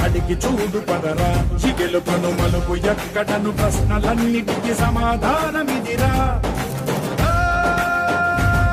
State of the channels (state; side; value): identical; both; correlation 1.00